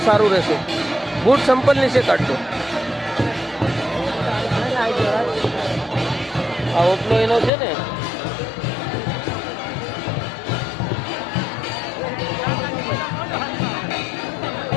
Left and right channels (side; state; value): right; drops out; at 7.5 s